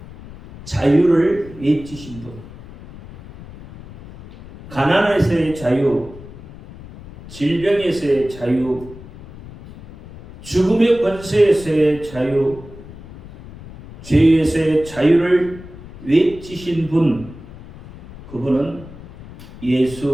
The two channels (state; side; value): noise; left; rumble, 17 dB below the sound